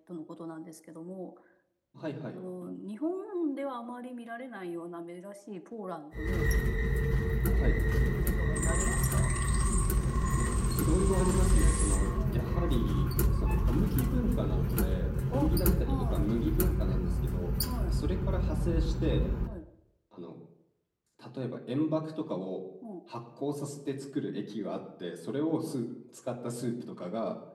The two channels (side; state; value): both; identical; correlation 1.00